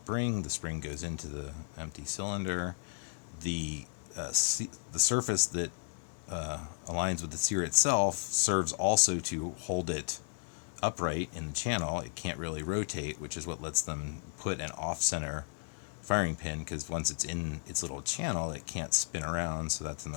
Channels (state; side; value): silent; right; digital silence